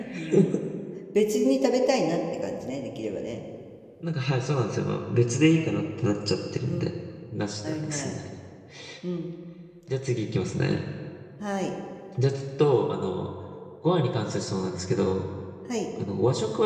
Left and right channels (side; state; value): both; identical; correlation 1.00